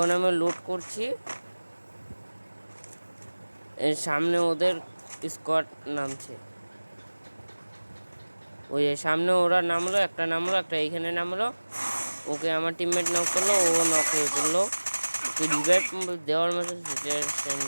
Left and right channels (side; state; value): both; inverted; correlation -1.00